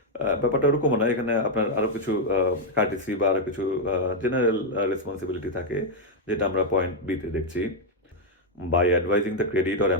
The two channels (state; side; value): normal; both; correlation -0.01